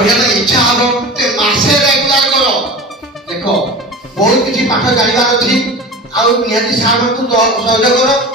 ইচ্ছা হবো তে মাসে রেগুলার করো দেখো बहुत किसी पाठ जानिबार अछि आ निहाती सार को सहयोग करो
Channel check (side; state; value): both; normal; correlation 0.33